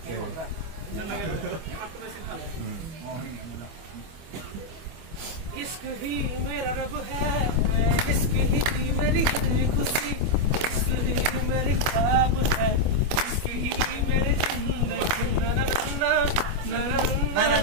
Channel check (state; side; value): late; left; 25 ms